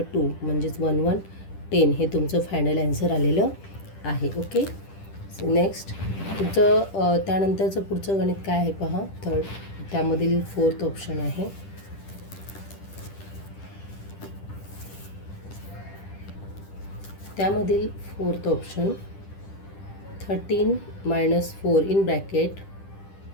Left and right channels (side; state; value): right; late; 10 ms